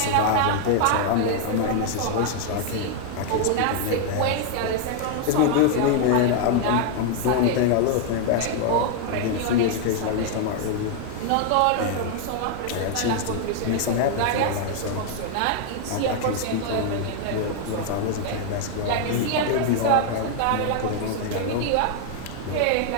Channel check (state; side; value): different; both; correlation 0.00